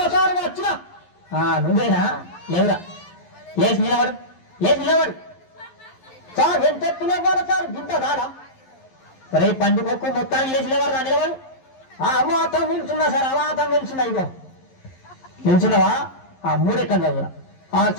సార్ వచ్చినా. నువ్వేనా? లేవురా, లేచి నిలబడు, లేచి నిలబడు. సార్ ఎంత ఎత్తులేవాడు సార్, గింత కాదా? రే పండుగకు మొత్తానికి లేచి లేవారు నిలబడు. అమాతం నిల్చున్నా సార్, అమాతం నిల్చున్నా. ఇగో నిల్చున్నావా? మూడెక్కం చదువురా.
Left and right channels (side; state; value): right; late; 11 ms